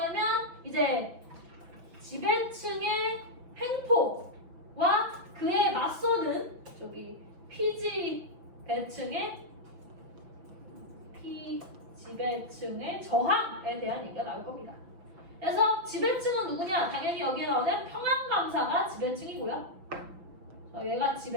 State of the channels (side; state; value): left; late; 6.0 ms